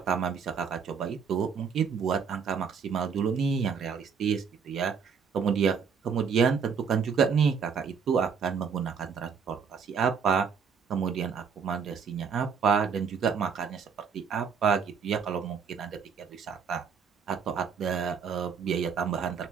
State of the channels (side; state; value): left; quieter; 6.3 dB